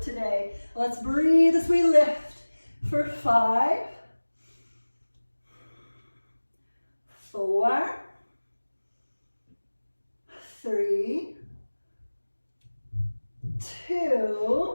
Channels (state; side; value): inverted; both; correlation -1.00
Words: today. Let's breathe as we lift for 5, 4, 3,